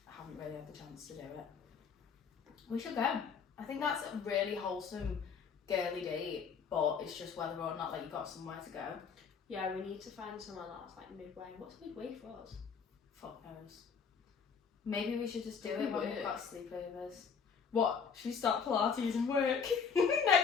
haven't really had the chance to do it. We should go. I think that's a really wholesome girly date, but it's just whether or not like you got somewhere to go. Yeah, we need to find somewhere that's like midway. What's midway for us? Fuck knows. Maybe we should just do it when Work. we've got sleepovers. What? Should we start Pilates and work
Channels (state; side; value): quieter; right; 6.1 dB